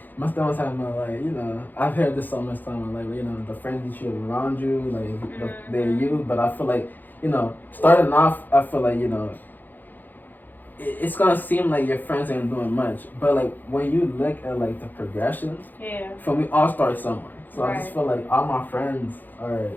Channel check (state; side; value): late; right; 0.087 ms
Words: my stomach's having like, you know, I've heard this so much time, like, you know, the friends that you have around you, like they're you. But I feel like, you know, starting off, I feel like, you know, it's gonna seem like your friends ain't doing much, but like when you look at like the progression, for me, all start somewhere. So I just feel like all my friends are